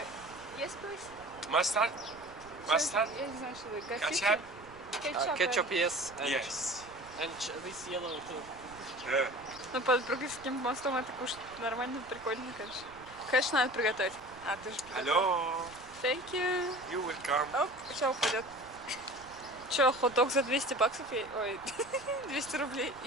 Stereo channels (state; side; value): noise; right; rumble, 22 dB below the sound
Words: Есть, please? Mustard? Mustard? Я не знаю, что вы Ketchup? Ketchup, yes. Yes. And this yellow too. Yeah. Ну, под Бруклинским мостом это кушать нормально, прикольно, конечно. Конечно, надо приготовить. А, ты же приготовил. Hello. Thank you. You welcome. Оп, сейчас упадет. Че, хот-дог за 200 баксов? Ой, 200 рублей.